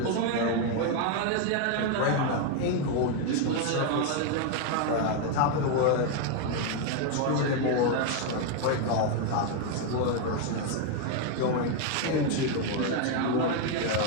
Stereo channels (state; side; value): different; both; correlation 0.01